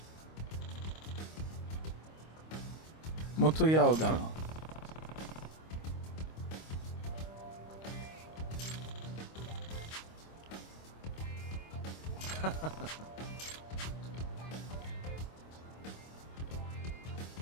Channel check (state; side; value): late; right; 25 ms